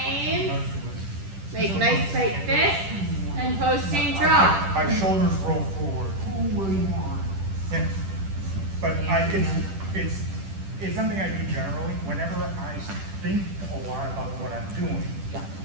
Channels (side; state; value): left; late; 10 ms